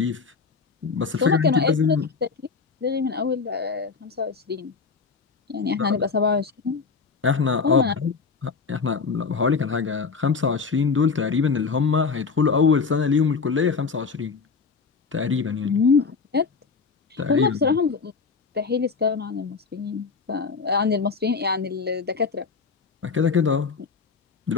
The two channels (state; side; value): quieter; right; 5.0 dB